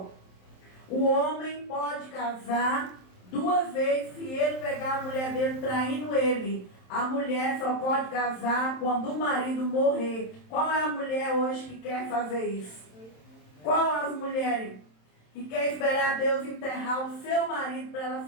O homem pode casar 2 vezes se ele pegar a mulher dele traindo ele. A mulher só pode casar quando o marido morrer. Qual é a mulher hoje que quer fazer isso? Qual as mulheres que quer esperar Deus enterrar o seu marido para elas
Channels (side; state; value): right; late; 27 ms